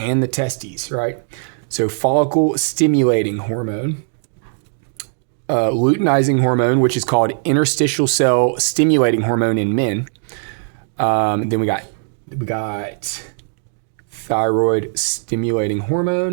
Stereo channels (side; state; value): left; silent; digital silence